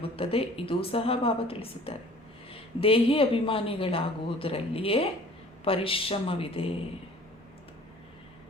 ಇದೂ ಸಹ ಬಾಬಾ ತಿಳಿಸುತ್ತಾರೆ. ದೇಹಿ ಅಭಿಮಾನಿಗಳಾಗುವುದರಲ್ಲಿಯೇ ಪರಿಶ್ರಮವಿದೆ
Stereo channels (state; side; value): normal; both; correlation 0.49